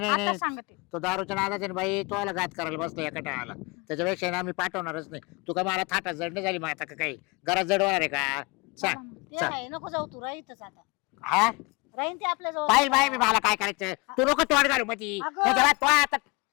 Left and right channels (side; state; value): right; quieter; 27.4 dB